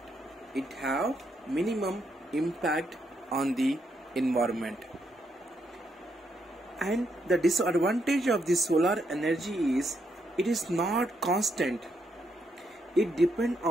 And the disadvantage of the solar energy is it is not constant. It depends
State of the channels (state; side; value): normal; both; correlation 0.78